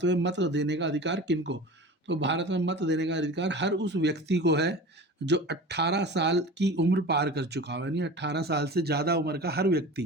में मत देने का अधिकार किनको? तो भारत में मत देने का अधिकार हर उस व्यक्ति को है जो 18 साल की उम्र पार कर चुका हो, यानी 18 साल से ज़्यादा उम्र का हर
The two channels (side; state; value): both; normal; correlation 0.35